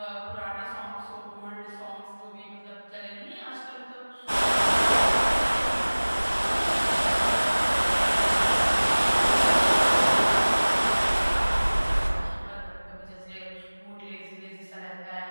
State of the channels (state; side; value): inverted; both; correlation -1.00